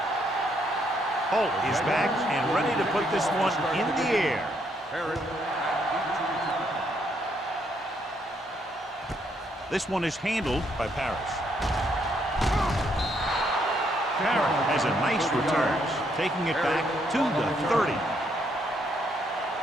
Holt is back and ready to put this one in the air. This one is handled by Parrish. Parrish has a nice return, taking it back to the 30.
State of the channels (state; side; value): normal; both; correlation 0.73